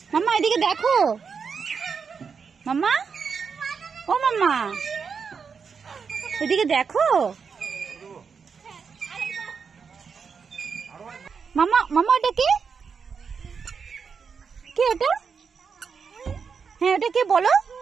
মাম্মা, এদিকে দেখো মাম্মা, ও মাম্মা এদিকে দেখো মাম্মা। মাম্মা ওটা কে, কে ওটা? হ্যাঁ ওটা কে বলো,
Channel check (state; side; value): quieter; left; 5.9 dB